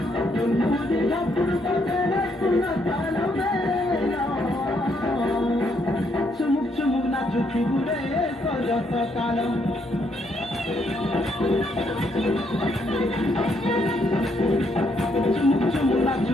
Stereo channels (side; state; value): both; normal; correlation 0.73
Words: తుమ్ముది ఢప్పుడు కట్టేస్తున్న కాలం వేళ చుముక్ చుముక్ నాచుకి గురే సరస కాలం చుముక్ చుముక్